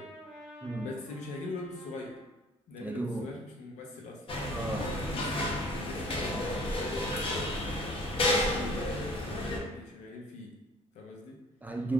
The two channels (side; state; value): both; normal; correlation 0.51